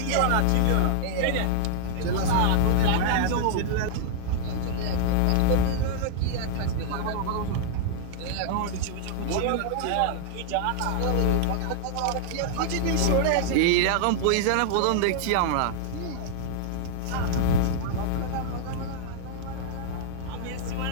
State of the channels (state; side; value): different; both; correlation 0.00